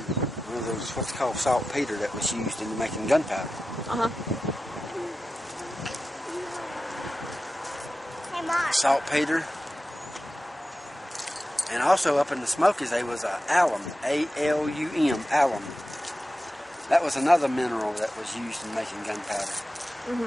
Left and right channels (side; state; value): both; normal; correlation 0.93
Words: one of those, what's called saltpeter, that was used in making gunpowder. Uh-huh. Saltpeter. And also up in the Smokies there was alum, A-L-U-M, alum. That was another mineral that was used in making gunpowder.